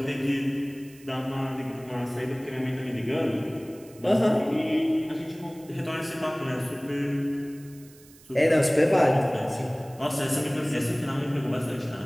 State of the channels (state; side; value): noise; right; hiss, 24 dB below the sound